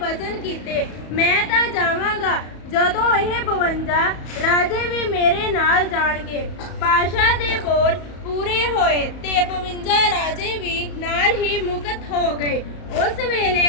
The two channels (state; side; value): late; right; 34 ms